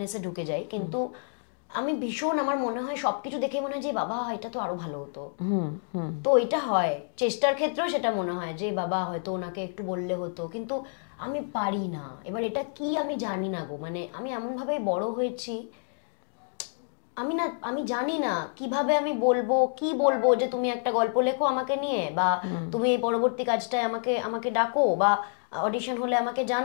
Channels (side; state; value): right; silent; 59 dB below the other